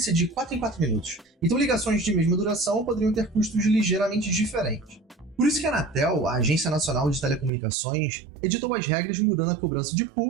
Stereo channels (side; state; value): left; drops out; at 7.5 s